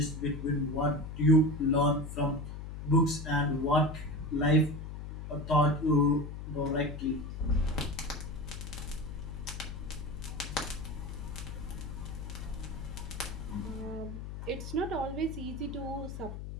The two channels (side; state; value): left; noise; hum, 8 dB below the sound